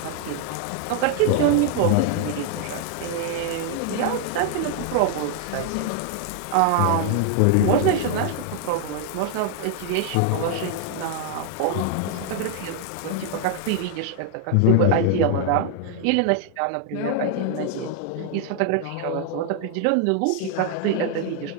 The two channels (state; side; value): different; both; correlation 0.00